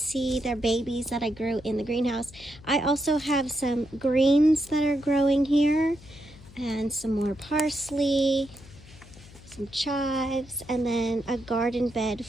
They're babies that I grew in the greenhouse. I also have some greens that are growing here, and some more parsley, some chives, and then a garden bed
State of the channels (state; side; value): noise; left; hum, 21 dB below the sound